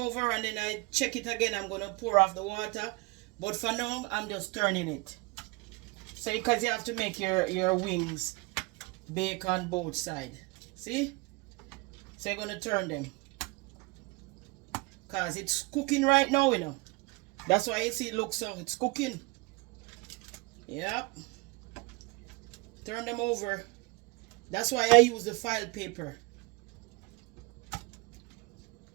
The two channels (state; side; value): quieter; left; 25.2 dB